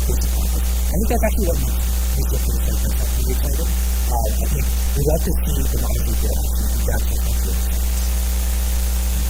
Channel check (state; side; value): identical; both; correlation 1.00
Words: pace of progress. I think that's actually what makes researchers like myself very excited. I think we love to see the models we build actually advance the frontier of science.